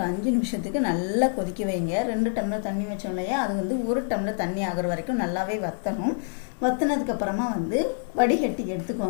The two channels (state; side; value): silent; right; digital silence